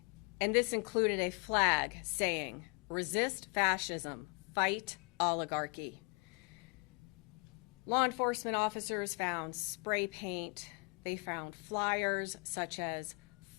And this included a flag saying, "Resist fascism, fight oligarchy." Law enforcement officers found spray paint. They found flyers such as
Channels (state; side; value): quieter; right; 33.3 dB